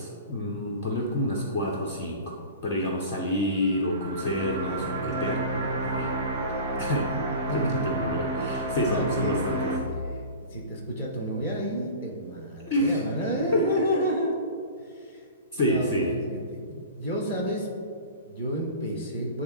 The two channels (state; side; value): inverted; both; correlation -0.36